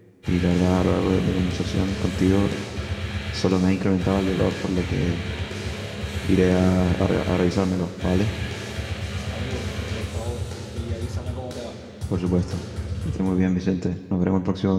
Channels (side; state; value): both; identical; correlation 1.00